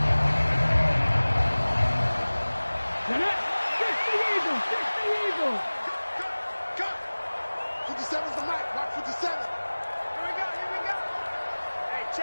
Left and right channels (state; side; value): inverted; both; correlation -1.00